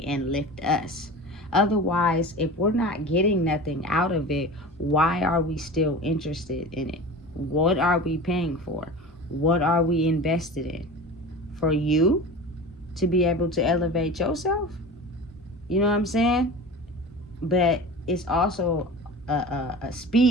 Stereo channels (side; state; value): both; normal; correlation 0.33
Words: and lift us. Otherwise, if we're not getting nothing out of it, why are we still interested in it? What are we paying for? What are we invested in? For you to be able to elevate yourself? You know what I'm saying? But it's also a